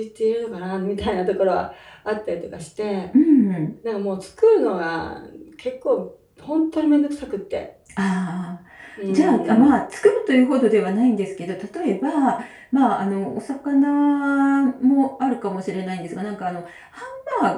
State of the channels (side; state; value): both; identical; correlation 1.00